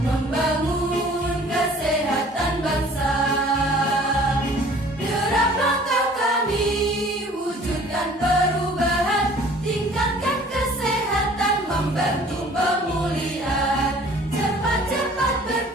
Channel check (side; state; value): both; normal; correlation 0.51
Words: kesehatan bangsa. Derap langkah kami wujudkan perubahan, tingkatkan kesehatan, membantu pemulihan. Cepat-cepat